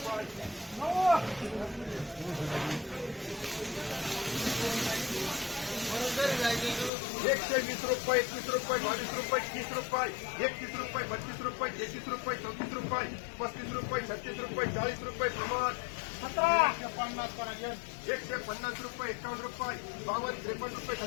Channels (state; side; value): drops out; right; at 6.9 s